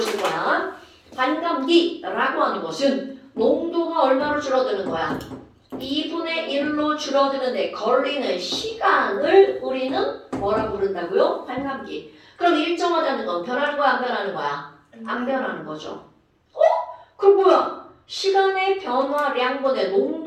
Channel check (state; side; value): identical; both; correlation 1.00